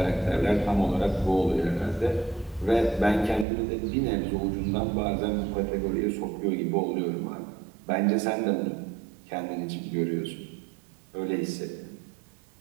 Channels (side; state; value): left; drops out; at 3.5 s